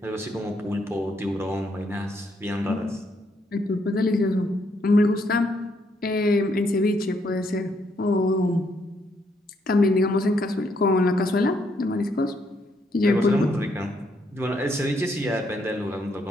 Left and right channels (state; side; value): normal; both; correlation 0.73